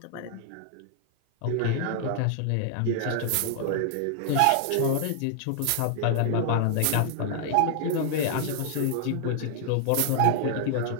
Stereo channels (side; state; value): both; different; correlation -0.01